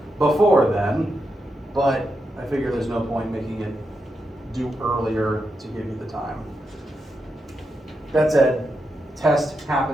before then, but I figure there's no point making it due earlier to give you the time. That said, test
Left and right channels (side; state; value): both; normal; correlation 0.85